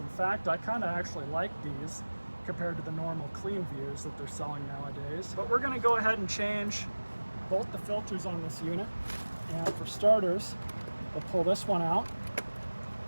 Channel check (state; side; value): inverted; both; correlation -1.00